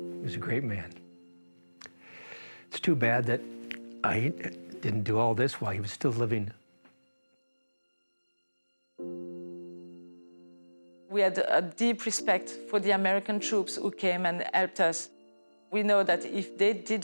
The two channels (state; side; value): inverted; both; correlation -1.00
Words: was a great man. It's too bad that I didn't do all this while he was still living. We had a deep respect for the American troops who came and helped us. We know that if they